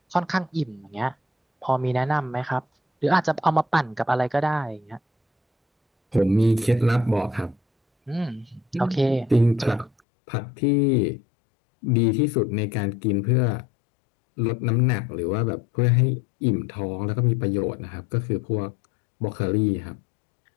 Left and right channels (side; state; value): right; drops out; at 9.9 s